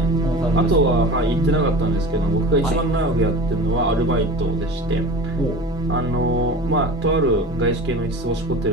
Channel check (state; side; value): normal; both; correlation 0.36